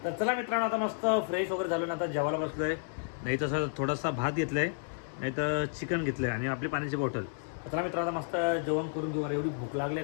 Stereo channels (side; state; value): right; silent; 57 dB below the other